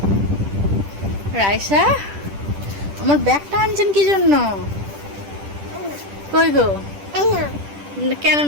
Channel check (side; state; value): left; late; 10 ms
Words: রাইসা, আমার ব্যাগটা আনছেন কি জন্য? কই গো? কেন